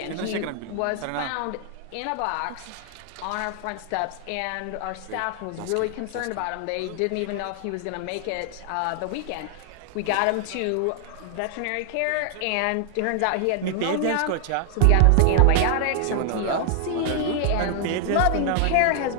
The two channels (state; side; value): different; both; correlation 0.00